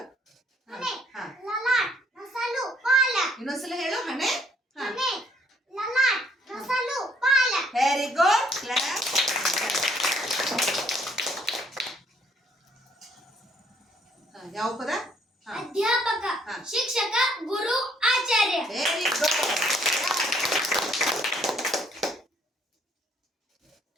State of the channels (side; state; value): both; normal; correlation 0.65